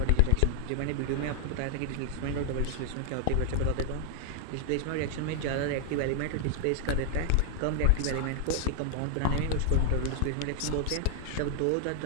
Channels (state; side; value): different; both; correlation 0.00